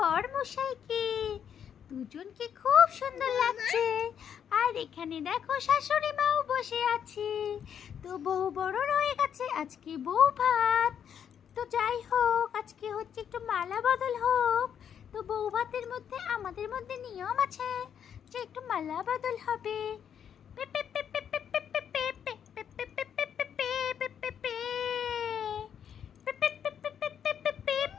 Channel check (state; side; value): quieter; right; 8.5 dB